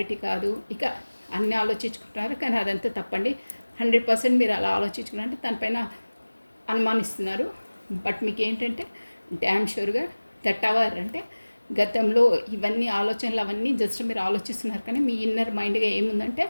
కాదు, ఇక అన్నీ ఆలోచించుకుంటున్నారు. కానీ అదంతా తప్పండి. 100% మీరు అలా ఆలోచించుకున్నారంటే తనపైన అనుమానిస్తున్నారు. బట్ మీకు ఏంటంటే డ్యామ్ షూర్గా దట్ అవర్ అంటే గతంలో ఇవన్నీ ఆలోచనలు అవన్నీ జస్ట్ మీరు ఆలోచిస్తున్నారు. కానీ మీ ఇన్నర్ మైండ్గా ఏముందంటే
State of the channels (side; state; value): both; inverted; correlation -1.00